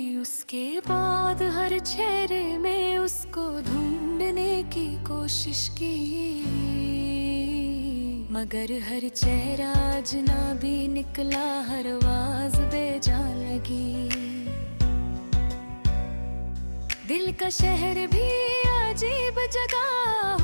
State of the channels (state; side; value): inverted; both; correlation -1.00